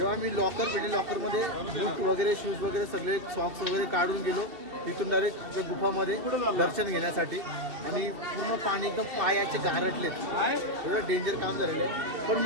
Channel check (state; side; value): late; left; 2.7 ms